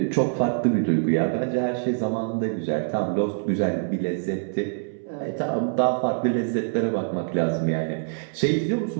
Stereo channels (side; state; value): left; silent; 62 dB below the other